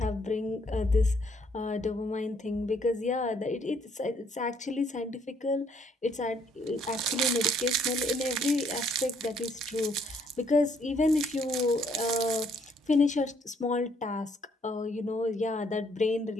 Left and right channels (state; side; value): normal; both; correlation 0.67